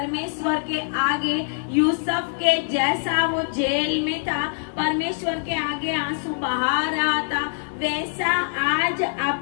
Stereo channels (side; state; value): right; silent; digital silence